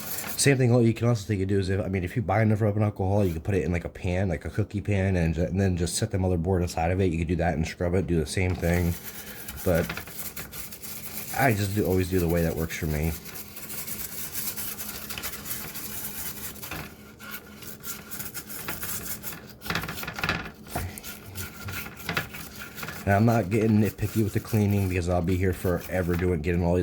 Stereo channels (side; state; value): both; identical; correlation 1.00